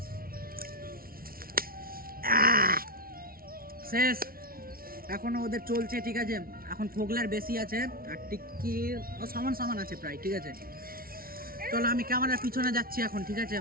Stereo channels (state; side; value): late; left; 0.43 ms